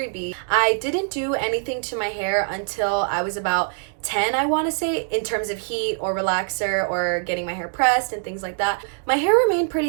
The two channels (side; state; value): left; silent; digital silence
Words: I didn't do anything to my hair until I was about 10, I want to say, in terms of heat or relaxer or getting my hair pressed and things like that. My hair remained